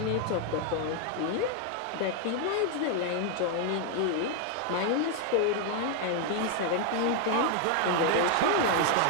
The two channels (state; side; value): different; both; correlation 0.01